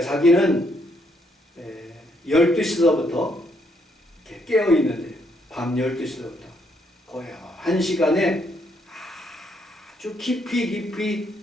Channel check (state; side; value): normal; both; correlation 0.73